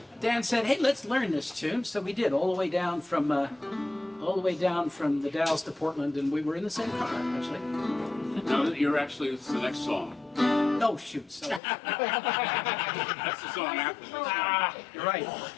Dan said, "Hey, let's learn this tune." So we did all the way down from the Dalles to Portland, and we were in the same car actually. No, you're actually, it's the next song. Oh shoot! So That's the song after this. you're right.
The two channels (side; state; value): right; drops out; at 11.6 s